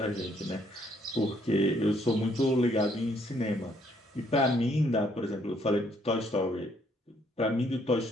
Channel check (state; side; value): normal; both; correlation 0.68